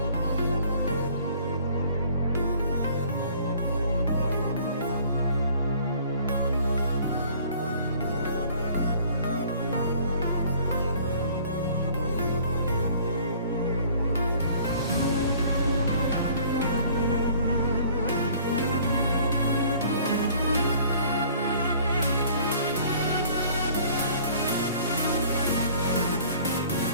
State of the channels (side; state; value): both; inverted; correlation -0.53